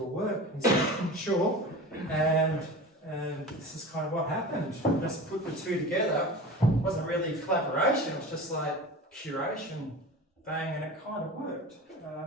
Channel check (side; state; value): both; normal; correlation 0.33